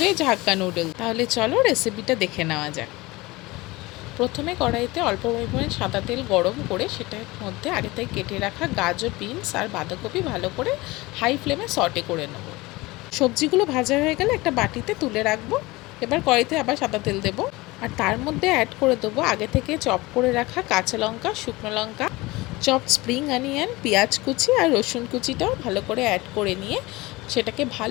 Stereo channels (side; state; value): right; quieter; 21.5 dB